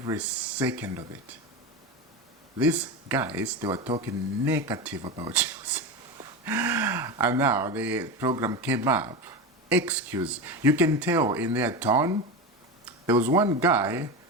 second of it. These guys, they were talking negative about Chelsea, and now the program came up. Excuse. You can tell in their tone. There was one guy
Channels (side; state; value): both; normal; correlation 0.21